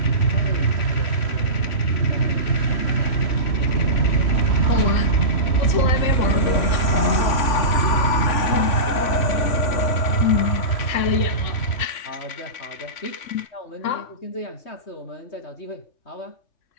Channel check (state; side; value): late; right; 3.6 ms